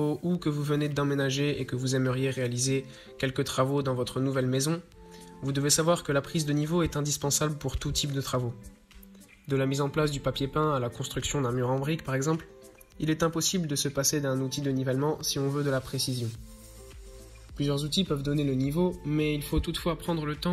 ou que vous venez d'emménager et que vous aimeriez réaliser quelques travaux dans votre nouvelle maison, vous devez savoir que la prise de niveau est indispensable pour tout type de travaux. De la mise en place du papier peint à la construction d'un mur en briques par exemple, il est impossible de se passer d'un outil de nivellement si on veut de la précision. Plusieurs outils peuvent donner le niveau, mais il faut toutefois prendre le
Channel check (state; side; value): identical; both; correlation 1.00